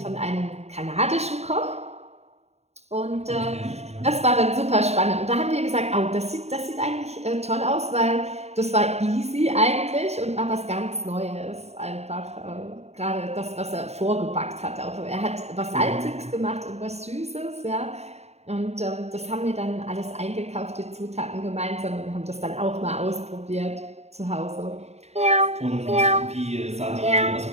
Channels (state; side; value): late; left; 0.31 ms